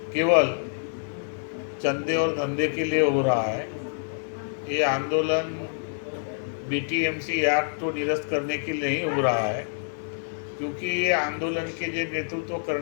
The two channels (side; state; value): right; silent; digital silence